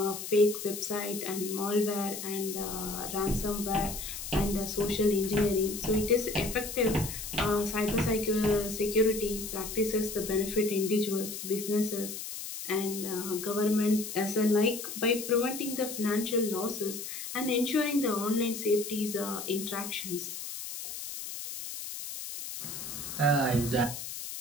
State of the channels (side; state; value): left; noise; hiss, 8 dB below the sound